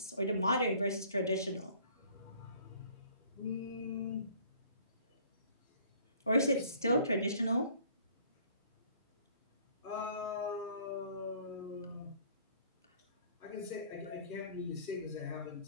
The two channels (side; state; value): both; inverted; correlation -0.56